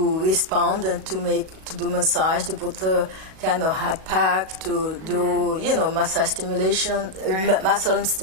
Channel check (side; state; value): left; late; 37 ms